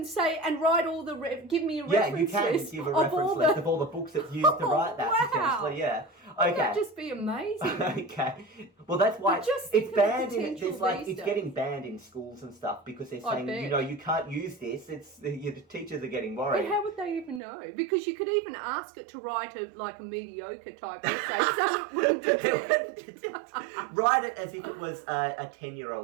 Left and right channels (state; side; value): drops out; left; at 17.4 s